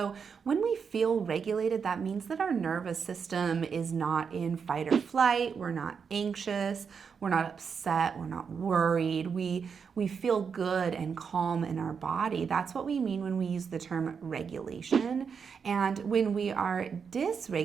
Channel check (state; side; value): quieter; left; 6.2 dB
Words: when we feel regulated, that means that our nervous system is not in fight or flight, we're not anxious, we're not upset, we're not worried, we feel good and calm in our body. That's what we mean when we use the term regulation. And when we are